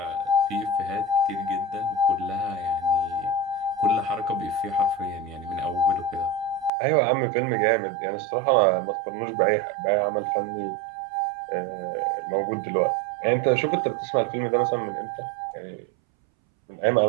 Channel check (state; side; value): drops out; left; at 6.7 s